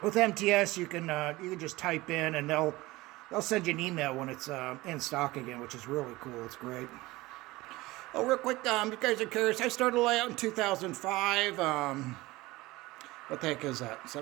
with MTS, you can just type in and they'll send you an email when it's in stock again, which is really cool. It's great. Oh, real quick, you guys are curious. I started layout in 2005. What the heck is that?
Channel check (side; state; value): left; quieter; 19.9 dB